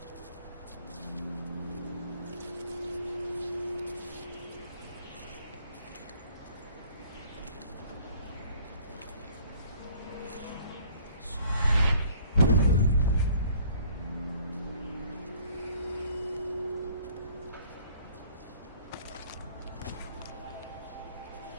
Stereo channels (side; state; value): both; inverted; correlation -0.54